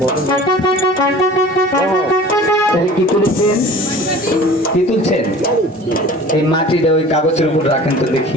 তাহলে কি তুলেছেন? কি তুলছেন? এই মাটিটা ওই কাগজের উপর রাখেন তো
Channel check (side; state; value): both; normal; correlation 0.43